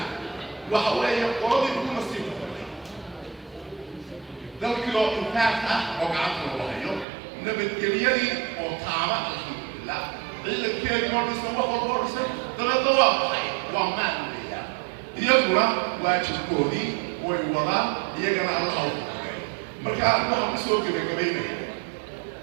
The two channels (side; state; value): left; drops out; at 7.1 s